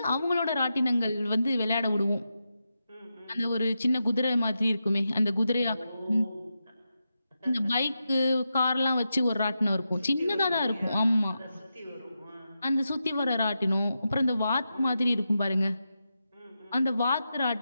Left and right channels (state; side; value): inverted; both; correlation -0.88